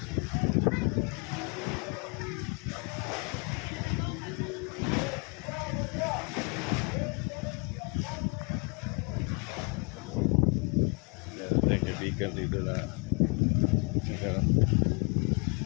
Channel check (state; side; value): quieter; right; 33.3 dB